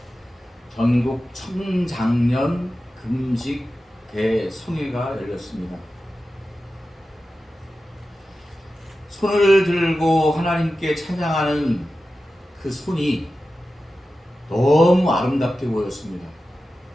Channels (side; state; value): both; normal; correlation 0.93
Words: 전국 청장년 금식 대성회가 열렸습니다. 손을 들고 하나님께 찬양하는 그 손이 너무 아름답게 보였습니다.